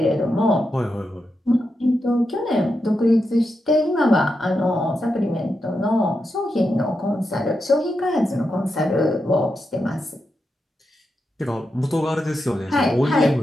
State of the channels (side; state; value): both; normal; correlation 0.86